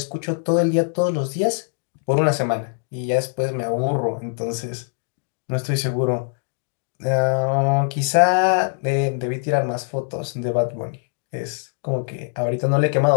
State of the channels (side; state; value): right; silent; digital silence